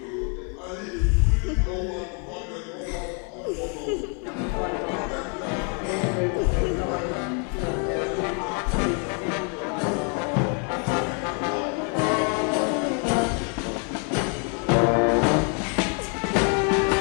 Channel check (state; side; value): quieter; right; 38.2 dB